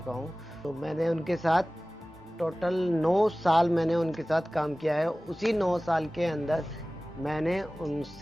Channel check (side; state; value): both; normal; correlation 0.98